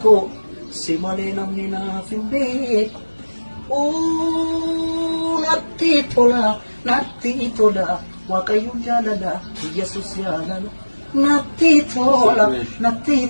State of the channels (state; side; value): inverted; both; correlation -1.00